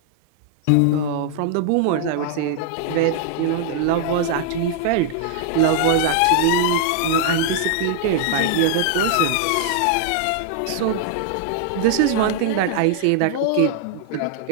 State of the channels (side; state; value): both; different; correlation 0.00